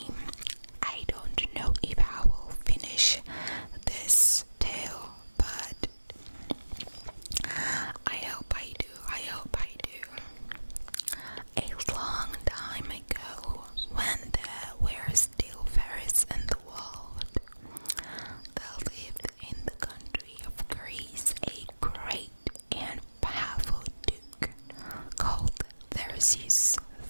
I don't know if I will finish this tale, but I hope I do. A long time ago, when there were still fairies in the world, there lived in the country of Greece a great and powerful duke called Theseus.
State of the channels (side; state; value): both; inverted; correlation -1.00